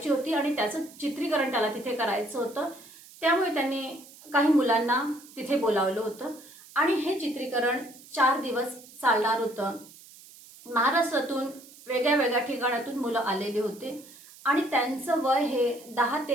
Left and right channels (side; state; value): right; noise; hiss, 21 dB below the sound